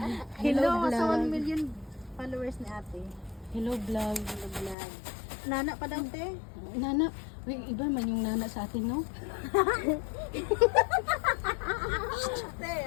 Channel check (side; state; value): right; drops out; at 4.8 s